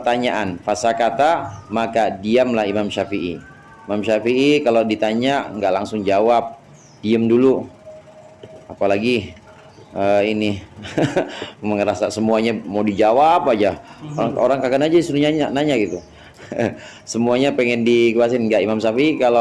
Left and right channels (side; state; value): both; identical; correlation 1.00